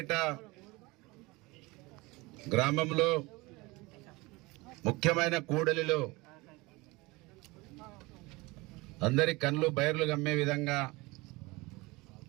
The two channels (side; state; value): left; quieter; 23.3 dB